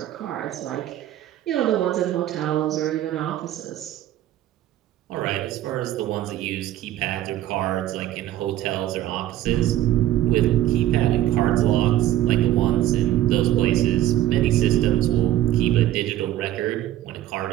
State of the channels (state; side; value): quieter; left; 13.3 dB